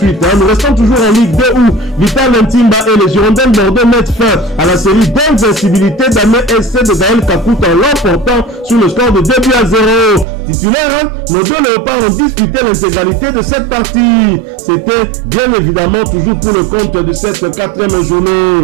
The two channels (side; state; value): left; drops out; at 10.2 s